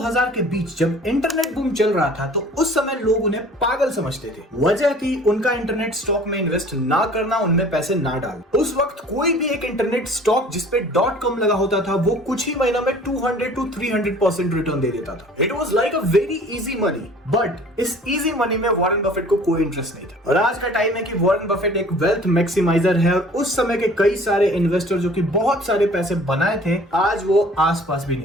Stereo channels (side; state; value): both; normal; correlation 0.49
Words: के बीच जब इंटरनेट बूम चल रहा था तो उस समय लोग उन्हें पागल समझते थे। वजह थी उनका इंटरनेट स्टॉक में इन्वेस्ट ना करना, उनमें पैसे ना डालना। उस वक्त कोई भी एक इंटरनेट स्टॉक जिसपे .com लगा होता था वो कुछ ही महीनों में 200 to 300% रिटर्न दे देता था। It was like a very easy money, but इस इजी मनी में वॉरेन बफेट को कोई इंटरेस्ट नहीं था। और आज का टाइम है कि वॉरेन बफेट एक वेल्थ मैक्सिमाइजर है और उस समय के कई सारे इन्वेस्टर जो कि बहुत सारे पैसे बनाए थे आज वो आसपास भी